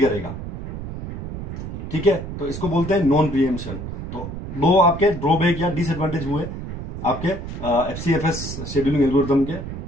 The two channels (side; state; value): right; noise; rumble, 8 dB below the sound